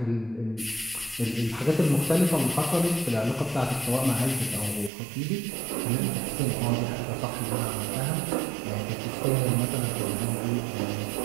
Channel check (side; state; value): left; drops out; at 4.9 s